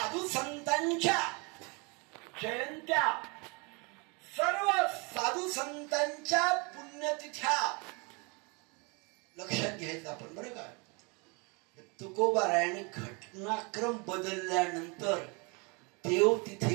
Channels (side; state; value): left; quieter; 30.5 dB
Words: संतांच्या जयंत्या, सर्व साधू संतांच्या पुण्यतिथ्या लक्षात घ्यायचं आपण. बरं का? तुकोबारायांनी घटनाक्रम बदलल्यानंतर देव